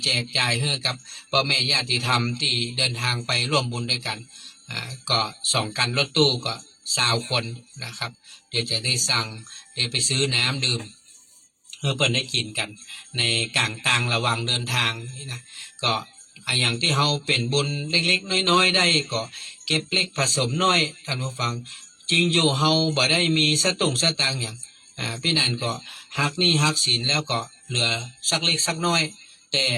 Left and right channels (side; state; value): both; identical; correlation 1.00